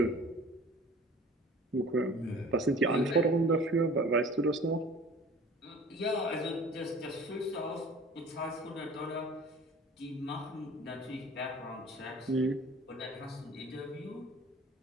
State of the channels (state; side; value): normal; both; correlation 0.45